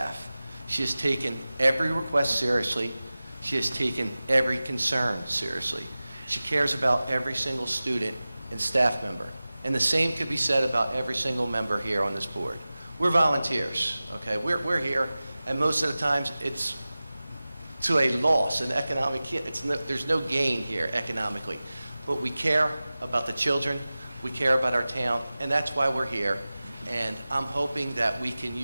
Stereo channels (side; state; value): both; inverted; correlation -0.97